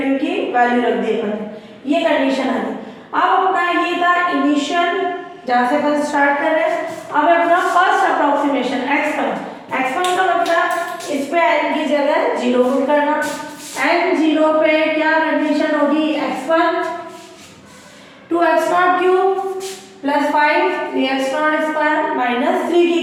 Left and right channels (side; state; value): both; identical; correlation 1.00